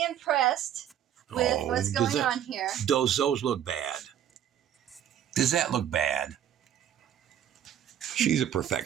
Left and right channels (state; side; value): quieter; left; 10.2 dB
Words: impressed with what's going on here. Those look bad. Does that look bad? She's a